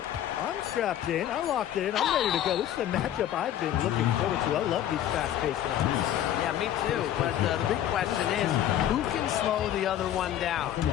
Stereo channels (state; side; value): quieter; right; 11.4 dB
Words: I'm strapped in. I locked it in. I'm ready to go. This is a matchup I've been looking forward to. I love these fast-paced ones. Yeah, me too. But the big question is, who can slow the other one down?